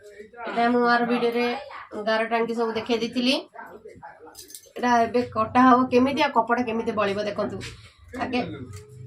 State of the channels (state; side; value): identical; both; correlation 1.00